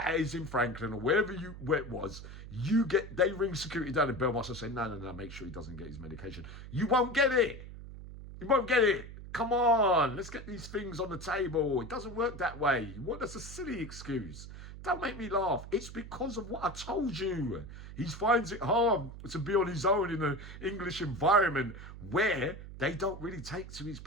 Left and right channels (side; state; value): right; noise; hum, 12 dB below the sound